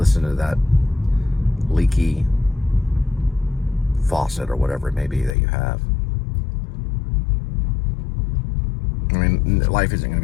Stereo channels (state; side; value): drops out; right; at 5.4 s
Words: to that leaky faucet or whatever it may be that you have. I mean, life isn't going